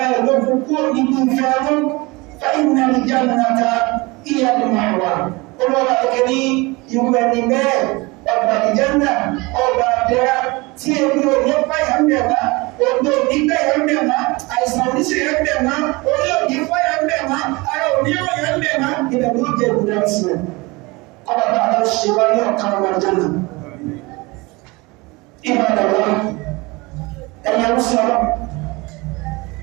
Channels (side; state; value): left; quieter; 24.3 dB